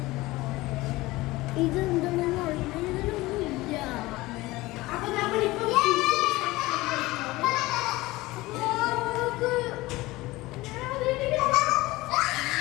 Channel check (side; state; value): right; quieter; 19.7 dB